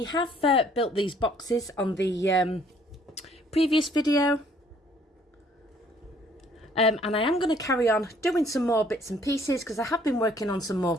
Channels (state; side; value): normal; both; correlation 0.61